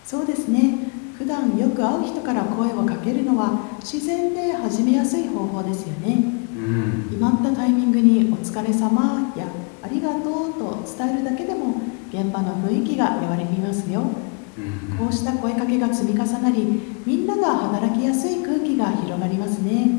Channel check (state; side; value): quieter; right; 37.2 dB